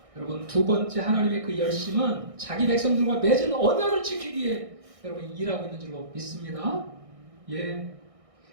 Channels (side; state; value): left; late; 1.6 ms